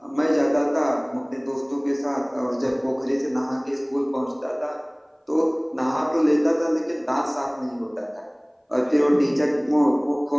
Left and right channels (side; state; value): both; identical; correlation 1.00